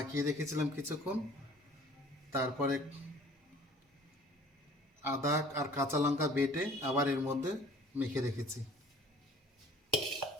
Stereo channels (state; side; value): normal; both; correlation 0.50